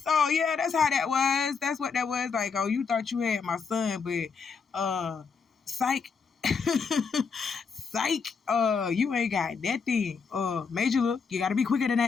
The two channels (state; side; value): quieter; right; 5.5 dB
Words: yeah, that's how that was. That's what that was. Like, oh, you thought you had my son, but psych. Psych, you ain't got that thing. Major look, you gotta be quicker than